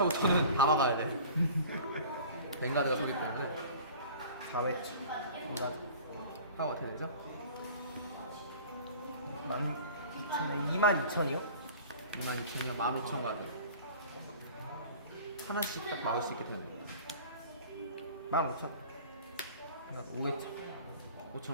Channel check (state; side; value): inverted; both; correlation -0.43